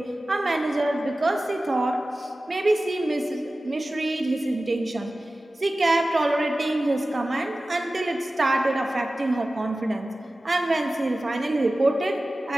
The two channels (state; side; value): normal; both; correlation 0.96